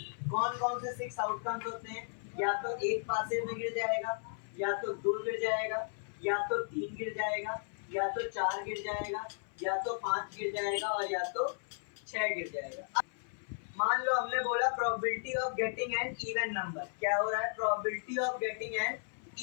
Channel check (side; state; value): right; silent; 54 dB below the other